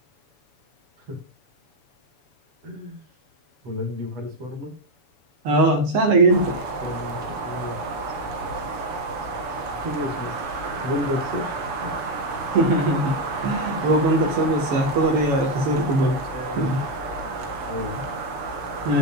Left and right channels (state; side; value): late; left; 7.0 ms